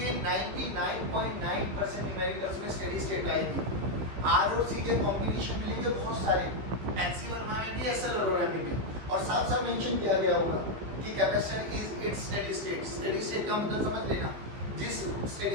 99.9% न्यूमेरिकल्स में स्टेडी स्टेट आएगी। R और C के कॉम्बिनेशन मिलेंगे बहुत सारे, NC वर्मा में भी, SL अरोरा में भी, और साथ साथ मेंशन किया गया होगा कि capacitor is it's steady state. Steady state का मतलब समझ लेना,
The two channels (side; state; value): left; late; 15 ms